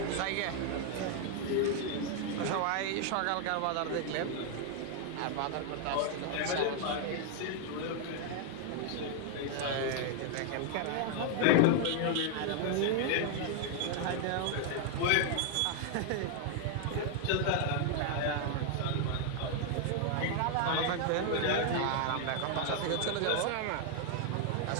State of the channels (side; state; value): both; different; correlation 0.00